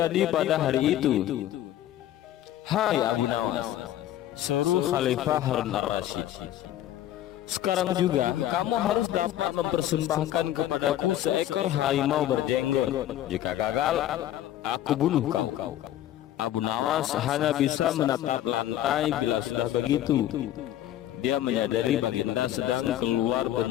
pada hari itu. Hai Abu Nawas, seru Khalifah Harun ar-Rasyid, sekarang juga kamu harus dapat mempersembahkan kepadaku seekor harimau berjenggot. Jika gagal, aku bunuh kau. Abu Nawas hanya bisa menatap lantai. Bila sudah begitu, dia menyadari Baginda sedang keluar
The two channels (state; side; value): quieter; right; 12.7 dB